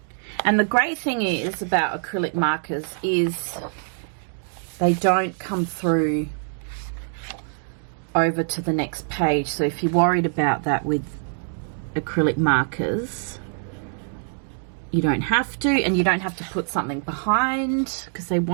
And the great thing is about acrylic markers is they don't come through over to the next page. So if you're worried about that with acrylic markers, you don't have to, and you don't have to put something behind because they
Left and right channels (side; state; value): left; silent; digital silence